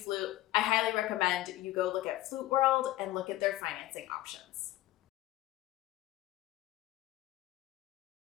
I highly recommend you go look at Flute World and look at their financing options.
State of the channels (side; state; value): right; quieter; 16.2 dB